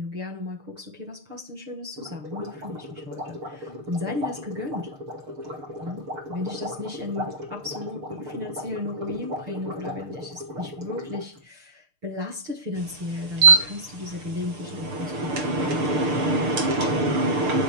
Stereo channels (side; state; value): left; late; 6.6 ms